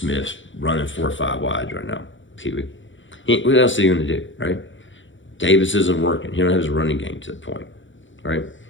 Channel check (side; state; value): right; late; 0.55 ms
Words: running 4 or 5 wides right now. What else are you going to do, right? Davis isn't working. He don't have his running game to the point, right?